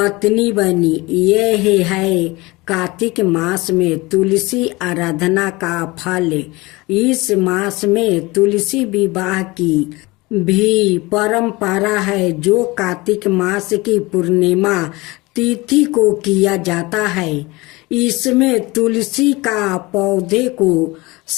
बनी। यह है कार्तिक मास में तुलसी आराधना का फल। इस मास में तुलसी विवाह की भी परंपरा है जो कार्तिक मास की पूर्णिमा तिथि को किया जाता है। इसमें तुलसी का पौधे को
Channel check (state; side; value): quieter; right; 22.6 dB